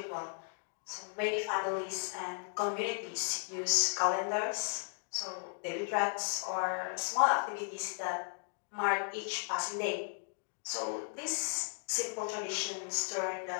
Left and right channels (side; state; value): right; silent; 54 dB below the other